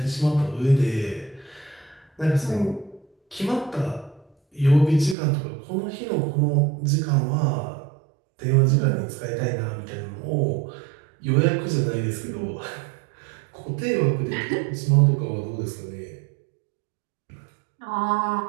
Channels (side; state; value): left; drops out; at 5.2 s